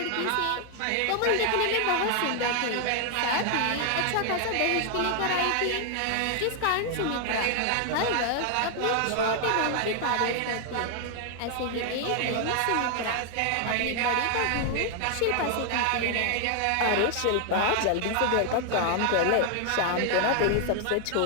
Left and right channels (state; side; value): different; both; correlation 0.00